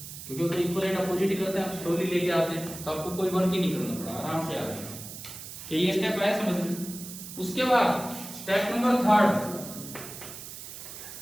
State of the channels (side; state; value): right; noise; hiss, 12 dB below the sound